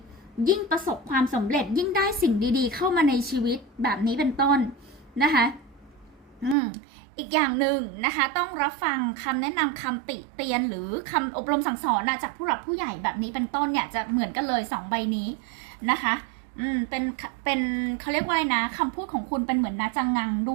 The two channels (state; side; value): drops out; left; at 6.6 s